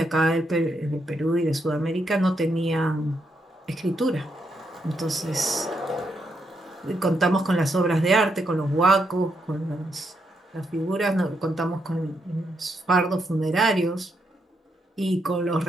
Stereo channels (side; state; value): both; normal; correlation 0.79